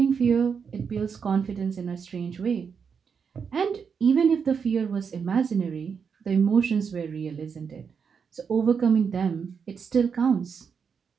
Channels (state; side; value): quieter; left; 6.3 dB